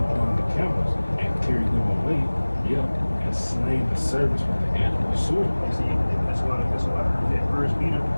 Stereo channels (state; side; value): inverted; both; correlation -1.00